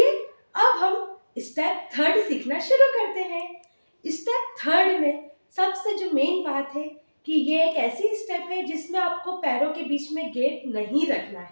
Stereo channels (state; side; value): inverted; both; correlation -1.00